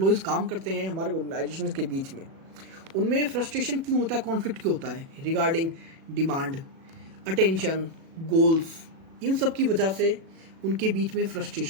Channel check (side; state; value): left; late; 37 ms